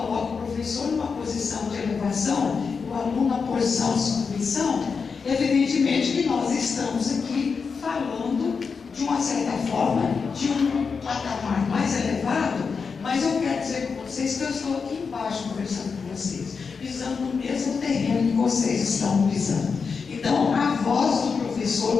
o professor numa posição de elevação, o aluno na posição de submissão. Evidentemente que nós estamos aqui falando de uma certa forma, de um patamar mais elevado, mas eu quero dizer com vocês que eu estou aqui embaixo conversando com vocês, pisando no mesmo terreno que vocês estão pisando. Então, a voz do professor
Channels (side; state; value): right; quieter; 5.4 dB